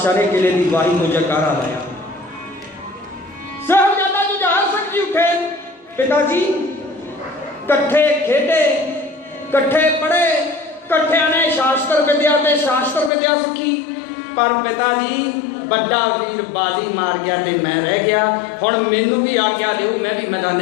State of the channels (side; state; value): right; drops out; at 13.1 s